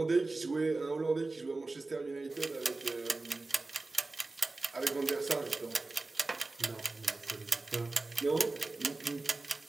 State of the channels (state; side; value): quieter; left; 3.4 dB